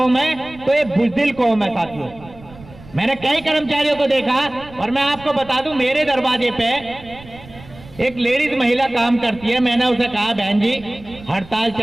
है तो ये बुजदिल कौम है साथियों। मैंने कई कर्मचारियों को देखा और मैं आपको बता दूं, मेरे दरवाजे पे एक लेडीज महिला काम करती है। मैंने उसे कहा, बहन जी हड़ताल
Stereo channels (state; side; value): noise; right; rumble, 20 dB below the sound